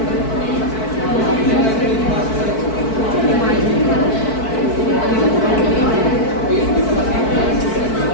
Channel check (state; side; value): late; right; 4.6 ms